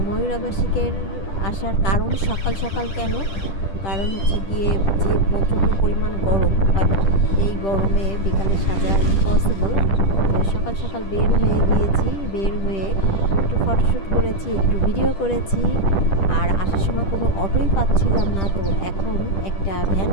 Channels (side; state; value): right; late; 10 ms